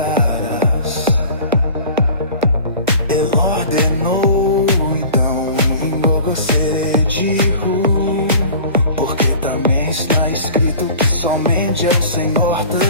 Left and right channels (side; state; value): both; inverted; correlation -0.42